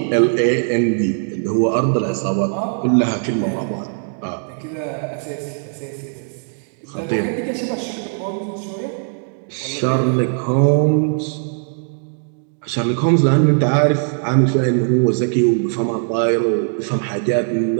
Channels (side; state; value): left; silent; digital silence